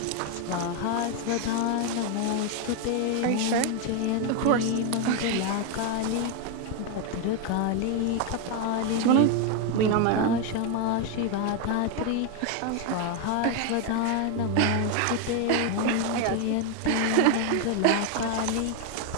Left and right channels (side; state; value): both; different; correlation 0.01